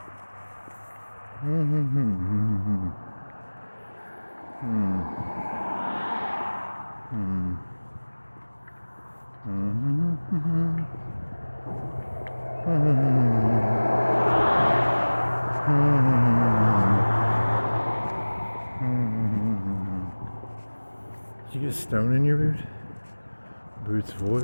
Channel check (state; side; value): inverted; both; correlation -1.00